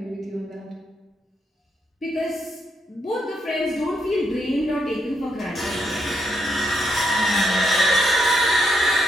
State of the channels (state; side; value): normal; both; correlation 0.78